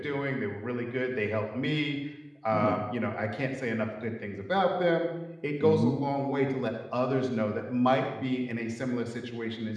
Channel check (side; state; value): both; identical; correlation 1.00